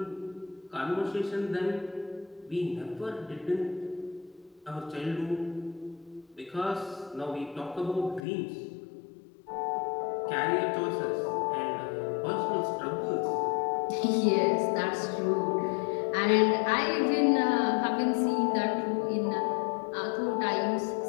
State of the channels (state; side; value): drops out; right; at 8.2 s